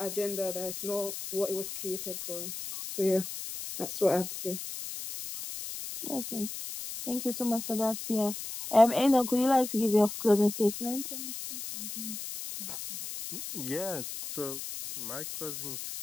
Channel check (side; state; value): left; noise; hiss, 8 dB below the sound